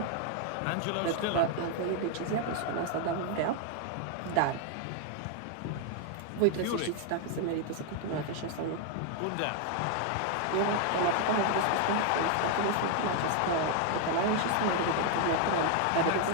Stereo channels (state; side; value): different; both; correlation 0.00